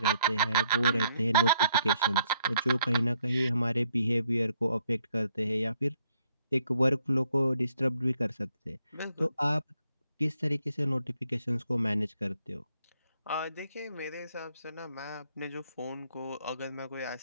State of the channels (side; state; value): both; inverted; correlation -0.72